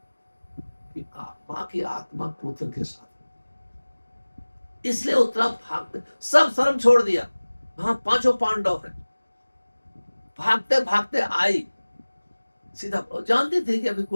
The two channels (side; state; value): both; inverted; correlation -1.00